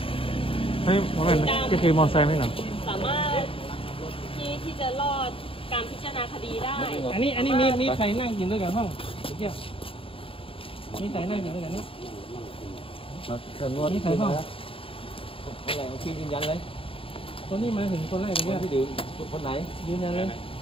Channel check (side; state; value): right; late; 0.26 ms